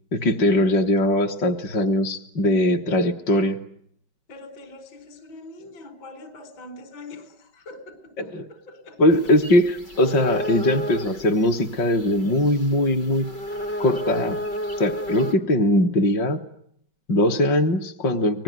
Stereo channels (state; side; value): late; right; 5.3 ms